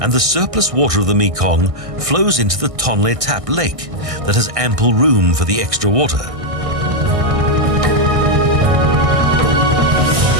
and the surplus water of the Mekong flows into the Tonle Sap Lake that has ample room for the extra water.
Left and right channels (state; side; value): late; left; 1.6 ms